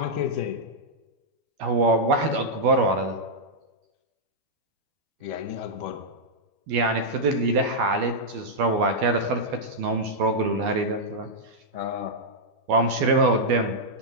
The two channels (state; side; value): late; left; 12 ms